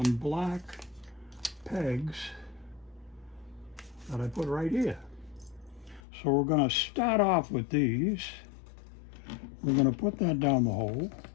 black pegs that I put right here. So we're going to start off with these. We're going to put that down the hole.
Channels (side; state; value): right; drops out; at 6.0 s